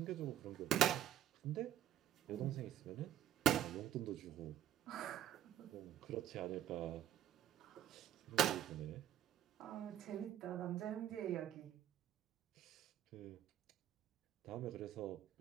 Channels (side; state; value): left; quieter; 10.9 dB